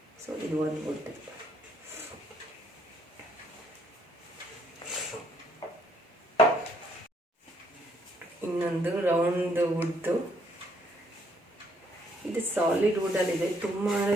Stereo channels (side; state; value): both; normal; correlation 0.69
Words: ಸೊ ಇದು ಒಂದು ವುಡ್. ಇನ್ನೊಂದು ರೌಂಡ್ ವುಡ್ದು. ಇದು ಸಾಲಿಡ್ ವುಡಲ್ಲಿದೆ. ತುಂಬಾ